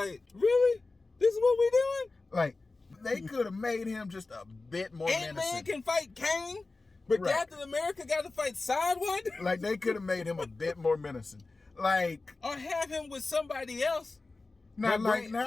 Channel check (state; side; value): quieter; right; 3.5 dB